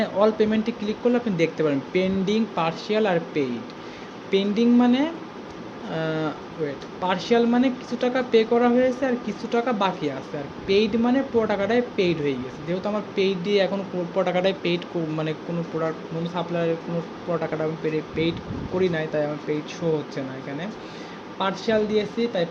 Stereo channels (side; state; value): both; identical; correlation 1.00